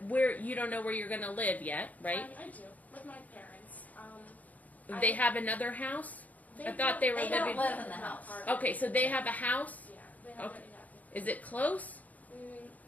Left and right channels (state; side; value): late; right; 0.075 ms